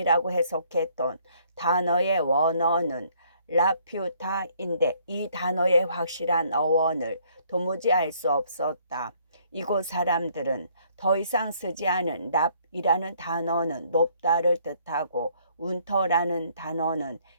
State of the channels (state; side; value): inverted; both; correlation -0.64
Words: 해석했던 단어의 원어는 라퓨타인데 이 단어의 확실한 어원을 도무지 알 수 없었다. 이곳 사람들은 더 이상 쓰지 않은 랍이라는 단어는 높다를 뜻하고 운터라는 단어는